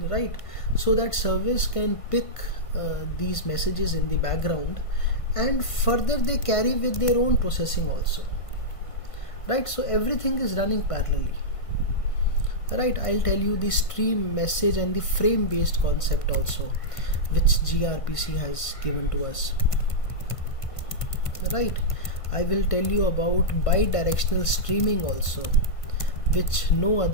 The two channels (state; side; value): late; right; 1.5 ms